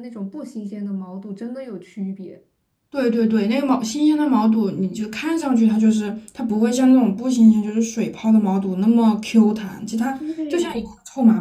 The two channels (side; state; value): both; identical; correlation 1.00